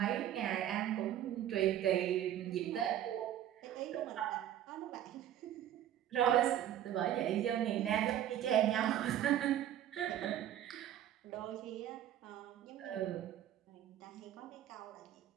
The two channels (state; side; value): quieter; left; 11.4 dB